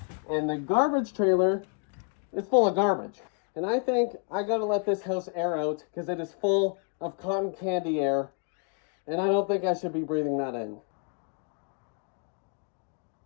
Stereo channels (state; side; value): quieter; right; 39.6 dB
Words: and the garbage trailer is full of garbage. And I think I gotta let this house air out because it is full of cotton candy air, and I don't think I should be breathing that in.